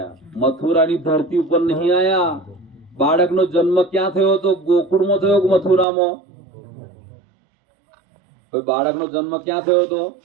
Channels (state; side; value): drops out; left; at 5.9 s